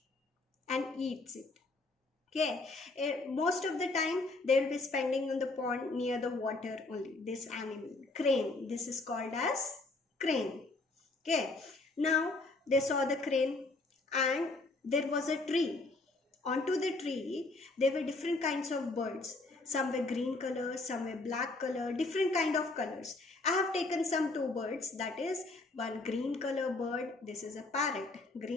and eats it. Okay, most of the time they will be spending on the pond near the water only. This animal, crane, this is called as crane. Okay, now they saw the crane and there was a tree. Onto the tree there were different kinds of birds. Some were green color, some were black color, different kind of colors. I have taken some 2 birds, that is one green color bird, this is a parrot.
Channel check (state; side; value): quieter; right; 3.3 dB